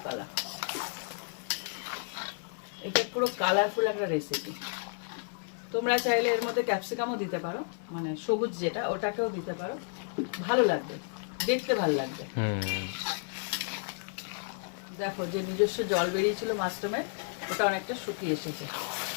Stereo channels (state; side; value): silent; right; 57 dB below the other